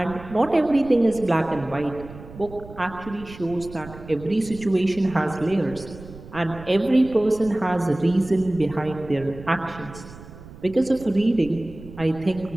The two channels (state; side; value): noise; right; rumble, 16 dB below the sound